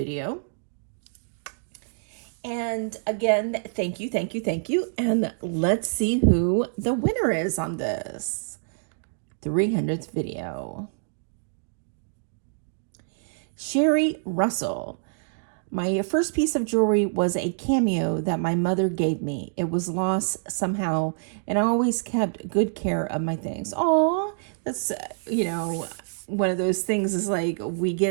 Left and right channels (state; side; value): silent; left; digital silence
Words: And again, thank you, thank you, thank you. And let's see who the winner is on this 300th video. Sherry Russell. My first piece of jewelry was a Cameo that my mother gave me. It was lost somehow, and I always kept good care of my things. Aw, that's, one of those things is like we